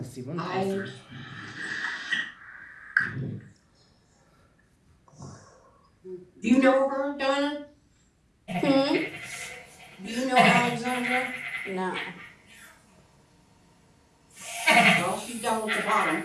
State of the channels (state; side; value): identical; both; correlation 1.00